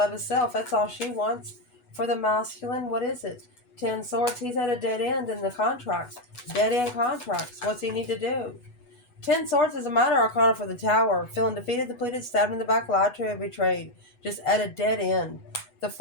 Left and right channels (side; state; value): right; late; 8.1 ms